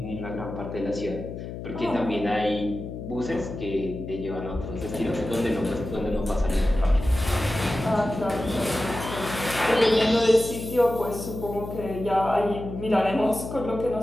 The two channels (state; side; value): noise; left; hum, 8 dB below the sound